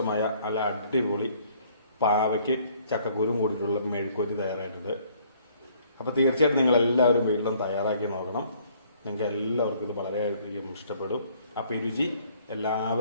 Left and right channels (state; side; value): inverted; both; correlation -0.60